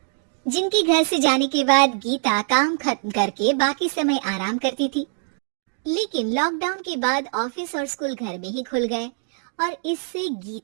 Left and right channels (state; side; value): silent; left; digital silence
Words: जिनके घर से जाने के बाद गीता काम खत्म करके बाकी समय आराम करती थी। लेकिन लॉकडाउन के बाद ऑफिस और स्कूल घर में ही खुल गए और इससे